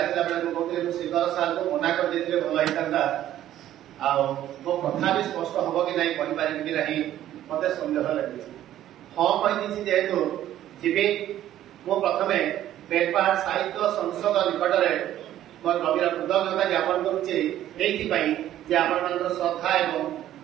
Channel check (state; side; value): quieter; left; 12.5 dB